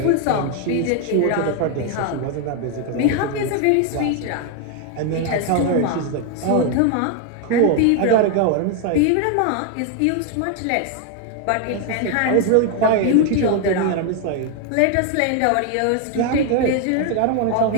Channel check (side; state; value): both; different; correlation 0.01